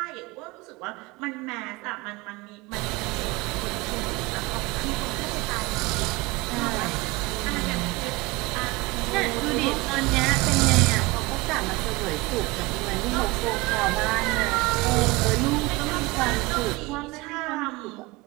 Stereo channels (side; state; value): left; quieter; 22.5 dB